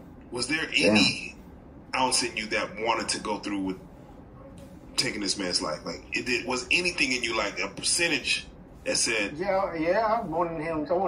Was there any ounce in you that wanted to go through with taking this man's life? Like, was anything in you, like a percentage that said, Yeah, I wanted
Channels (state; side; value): identical; both; correlation 1.00